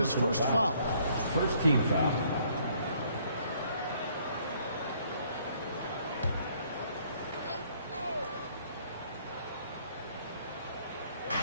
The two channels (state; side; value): inverted; both; correlation -0.64